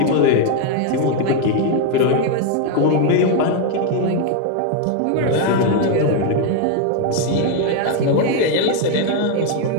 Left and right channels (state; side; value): different; both; correlation 0.01